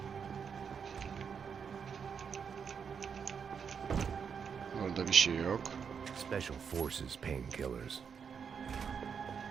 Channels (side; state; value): left; quieter; 6.7 dB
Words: Orada bir şey yok. Special Forces painkillers.